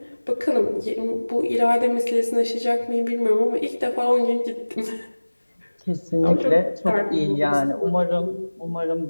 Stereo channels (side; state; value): both; inverted; correlation -1.00